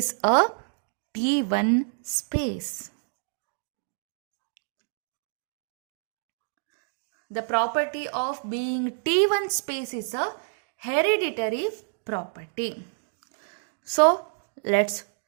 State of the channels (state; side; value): silent; left; digital silence